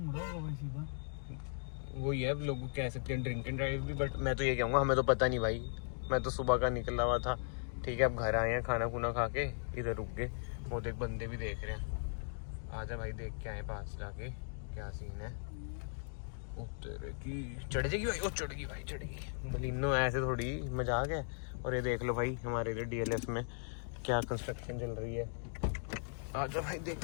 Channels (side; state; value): right; silent; digital silence